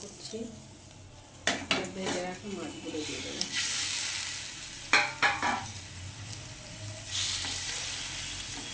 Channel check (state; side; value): identical; both; correlation 1.00